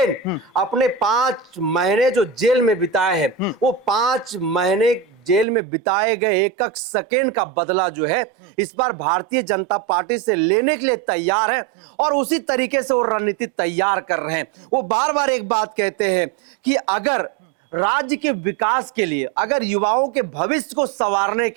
अपने 5 महीने जो जेल में बिताए हैं, वो 5 महीने जेल में बिताए गए एक एक सेकेंड का बदला जो है इस बार भारतीय जनता पार्टी से लेने के लिए तैयार है और उसी तरीके से वो रणनीति तैयार कर रहे हैं। वो बार बार एक बात कहते हैं कि अगर राज्य के विकास के लिए, अगर युवाओं के भविष्य को संवारने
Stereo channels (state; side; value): drops out; left; at 5.5 s